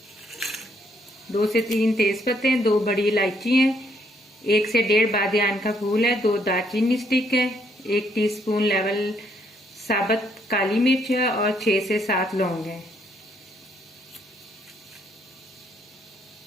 2 से 3 तेज पत्ते हैं, 2 बड़ी इलायची हैं, 1 से 1.5 बादियान का फूल है, 2 दालचीनी स्टिक है, 1 टीस्पून लेवल साबुत काली मिर्च है और 6 से 7 लौंग है।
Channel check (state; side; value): normal; both; correlation 0.71